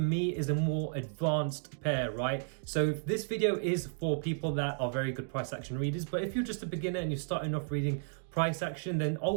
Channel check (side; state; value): left; silent; digital silence